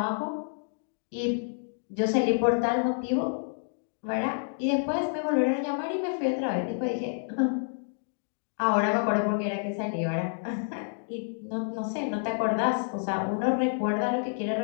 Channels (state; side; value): silent; right; digital silence